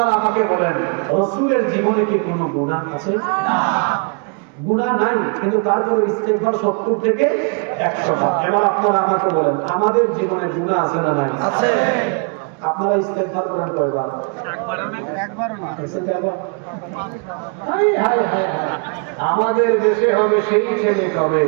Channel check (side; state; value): left; quieter; 37.9 dB